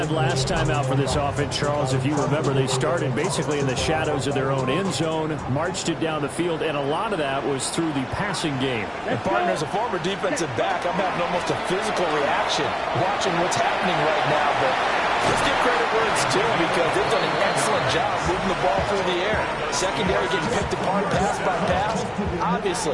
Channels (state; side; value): identical; both; correlation 1.00